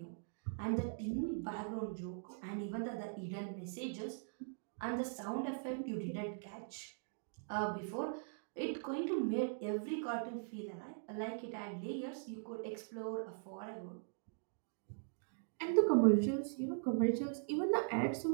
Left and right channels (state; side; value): silent; left; digital silence